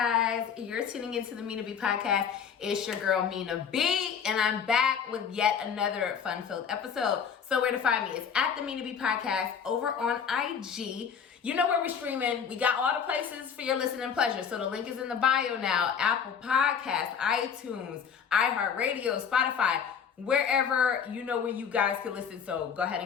you're tuning into the Mina B Podcast. It's your girl Mina B, and I'm back with yet another fun-filled episode. So where to find me? It's at the Mina B Podcast over on IG. You know where we're streaming. We got all the places for your listening pleasure. So the link is in the bio now. Apple Podcasts, iTunes, iHeartRadio, Spotify, wherever you know where you guys can listen. So go ahead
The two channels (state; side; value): quieter; right; 7.1 dB